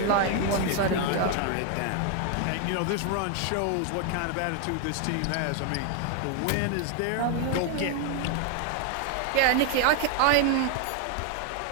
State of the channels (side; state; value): both; different; correlation 0.01